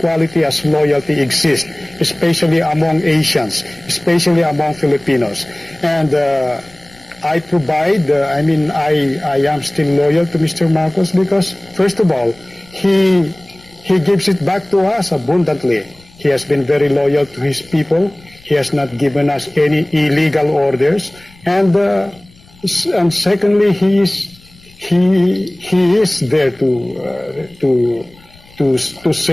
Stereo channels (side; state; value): left; noise; rumble, 27 dB below the sound